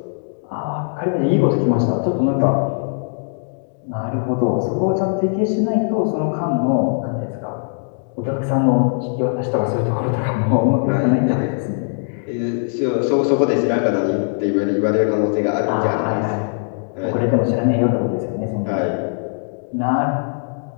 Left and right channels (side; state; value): right; silent; digital silence